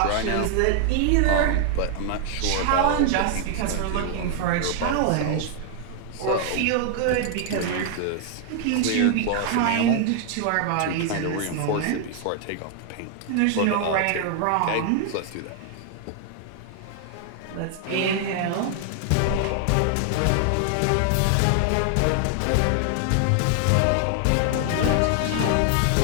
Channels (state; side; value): different; both; correlation 0.00